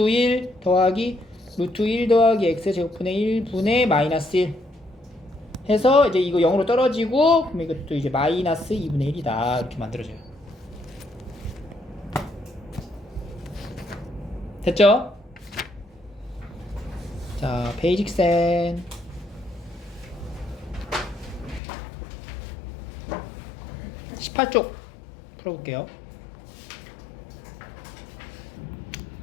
더하기 루트 1 더하기 x제곱분의 1분의 마이너스 1 해서 이제 이거 0으로 떨어지고 그럼 이것도 이제 마이너스 2분의 1이다 이렇게 만들어져요. 됐죠? 자, 베이직센 18쪽 풀어볼게요.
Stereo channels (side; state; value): right; drops out; at 21.6 s